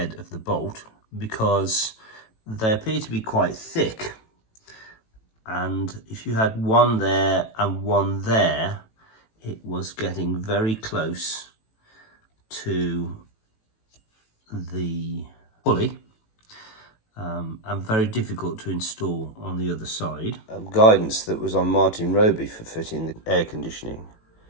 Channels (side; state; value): right; late; 18 ms